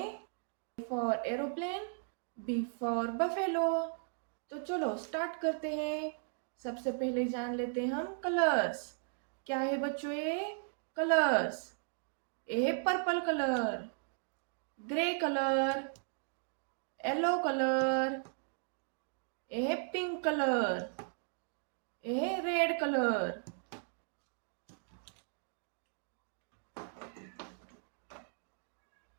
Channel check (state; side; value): silent; left; digital silence